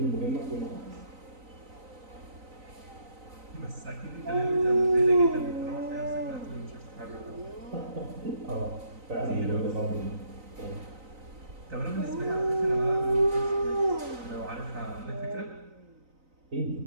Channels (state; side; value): late; left; 3.9 ms